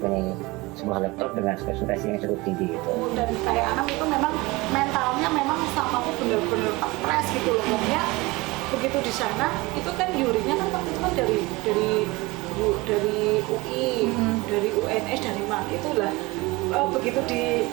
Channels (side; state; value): left; quieter; 22.7 dB